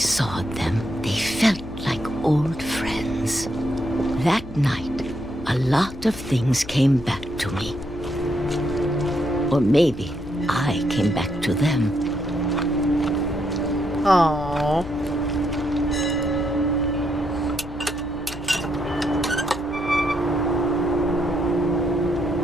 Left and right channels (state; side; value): noise; left; hum, 14 dB below the sound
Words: them, they felt like old friends. That night, a lot of things came back to me. Or maybe I came back to them. Aww.